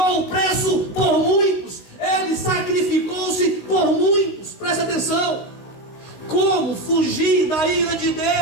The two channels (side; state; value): right; late; 16 ms